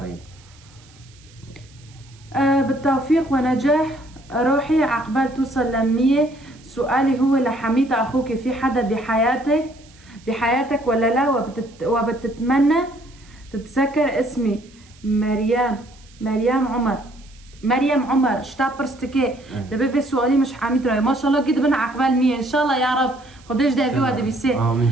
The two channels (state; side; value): noise; right; hiss, 27 dB below the sound